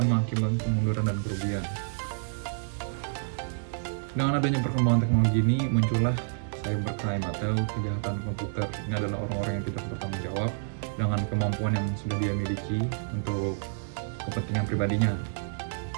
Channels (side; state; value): left; silent; digital silence